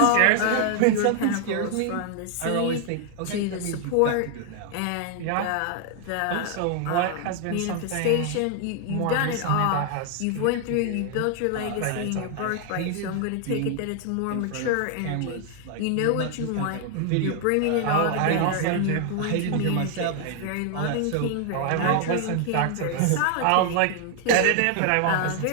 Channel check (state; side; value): different; both; correlation 0.00